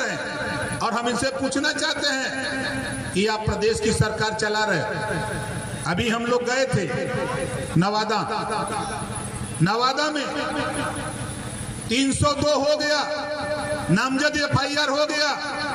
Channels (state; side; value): identical; both; correlation 1.00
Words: हैं। और हम इनसे पूछना चाहते हैं कि आप प्रदेश की सरकार चला रहे। अभी हम लोग गए थे नवादा में 302 हो गया, नामजद FIR हो गया,